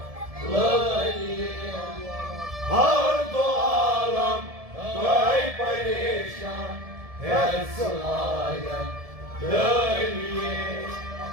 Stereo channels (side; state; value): left; late; 1.7 ms